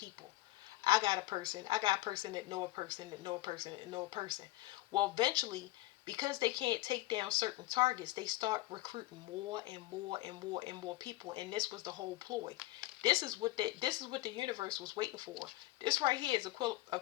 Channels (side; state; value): right; quieter; 18.0 dB